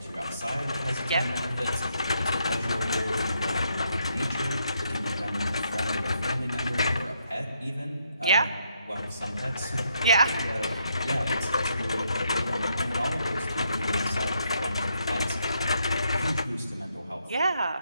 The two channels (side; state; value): both; inverted; correlation -0.76